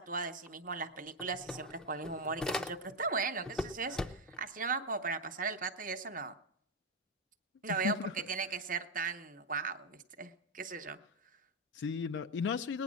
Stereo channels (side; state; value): both; normal; correlation 0.06